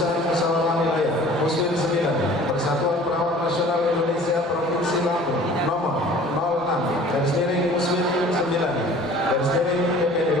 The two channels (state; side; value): normal; both; correlation 0.48